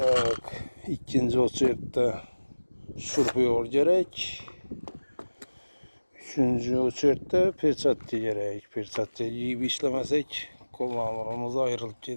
ikinci o'chirda şurpuyor gerek. Üçüncü o'chirda perchatcha gerek. Perchatcha yiyip işlemesek qo'llarimiz ayrılıp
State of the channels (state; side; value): inverted; both; correlation -1.00